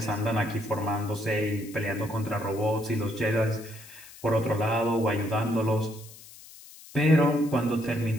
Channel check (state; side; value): noise; left; hiss, 19 dB below the sound